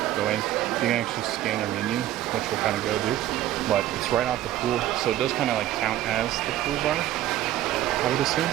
go in. You can actually scan their menu, which we'll kind of go do, but it's right off the pool, so it does kind of like count as the pool bar, I would assume.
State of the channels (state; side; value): quieter; left; 13.4 dB